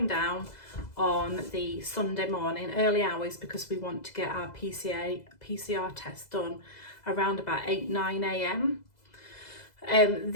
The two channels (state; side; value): late; right; 2.0 ms